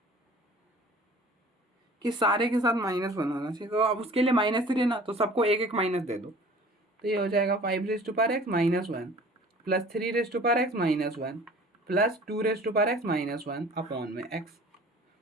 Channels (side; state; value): both; normal; correlation 0.47